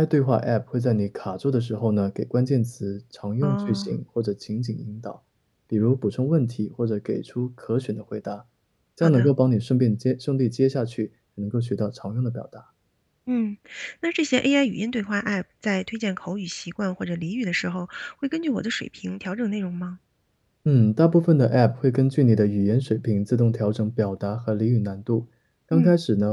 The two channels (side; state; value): both; identical; correlation 1.00